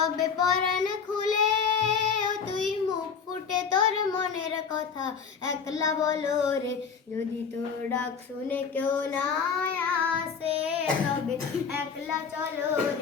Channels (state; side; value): quieter; right; 6.2 dB